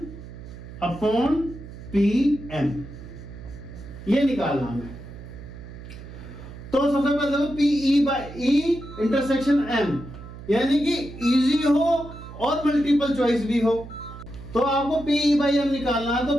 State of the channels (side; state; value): right; noise; hum, 14 dB below the sound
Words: upon P M, ये निकालना हमें। तो सबसे पहले देखो P E by E intersection M, यानी कि इजी हो और मल्टीपल चॉइस भी हो। तो आपको पी ई बाई एम निकालना है, तो